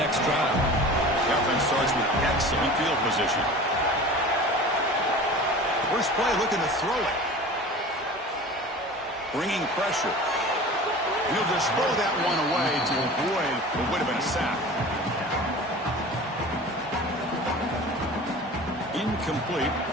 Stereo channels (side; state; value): both; normal; correlation 0.38